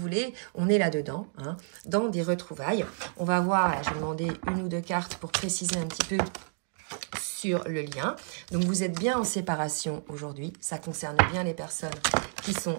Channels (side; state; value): left; silent; 58 dB below the other